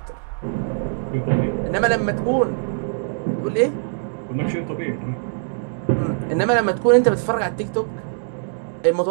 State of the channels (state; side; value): silent; left; digital silence